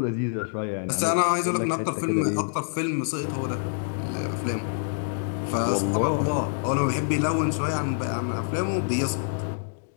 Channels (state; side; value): silent; right; digital silence